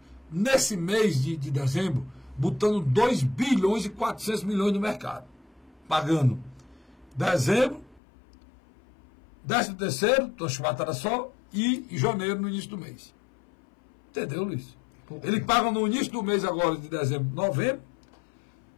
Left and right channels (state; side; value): drops out; right; at 8.0 s